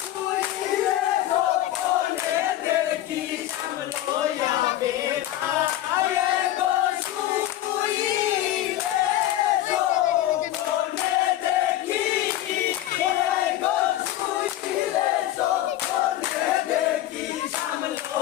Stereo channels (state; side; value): quieter; right; 13.7 dB